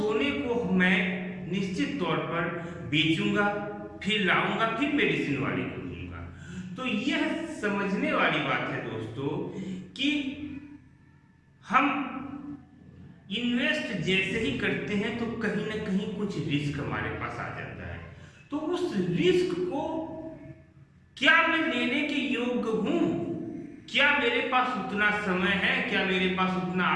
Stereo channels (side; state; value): both; identical; correlation 1.00